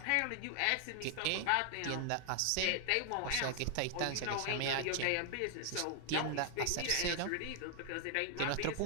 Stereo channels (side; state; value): both; different; correlation 0.00